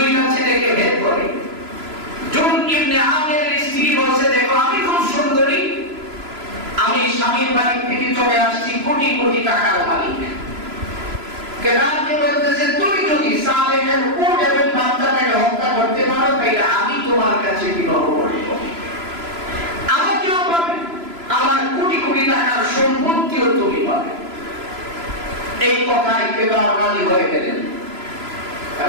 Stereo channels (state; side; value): late; left; 3.0 ms